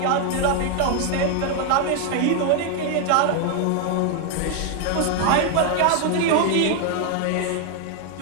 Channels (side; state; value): both; different; correlation 0.00